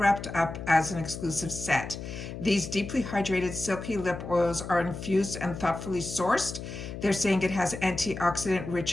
up as an exclusive set. These deeply hydrated, silky lip oils are infused and thoughtfully sourced. They're saying it has antioxidant-rich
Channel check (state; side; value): noise; left; hum, 9 dB below the sound